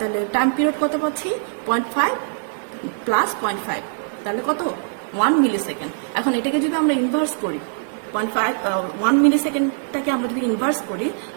টাইম পিরিয়ড কত পাচ্ছি, 0.5 প্লাস 0.5, তাহলে কত, 1 মিলি সেকেন্ড। এখন এটাকে যদি আমরা ইনভার্স করি, 1 মিলি সেকেন্ডটাকে আমরা যদি ইনভার্স করি,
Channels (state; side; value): silent; left; digital silence